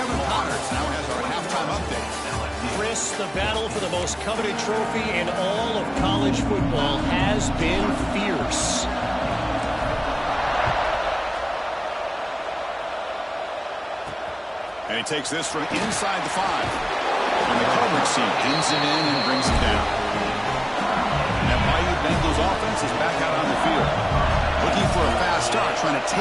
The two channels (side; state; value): both; identical; correlation 1.00